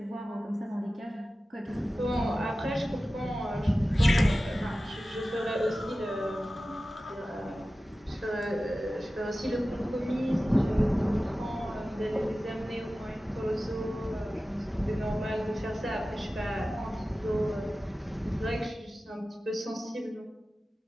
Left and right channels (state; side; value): normal; both; correlation 0.95